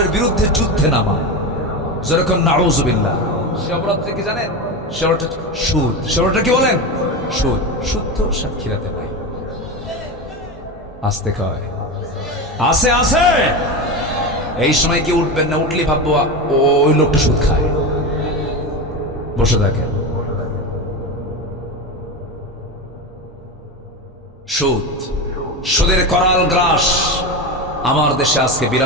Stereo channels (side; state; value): both; normal; correlation 0.20